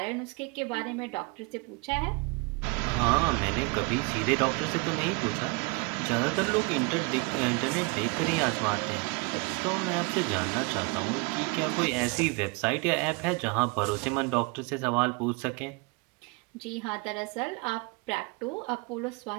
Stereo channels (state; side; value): quieter; left; 29.4 dB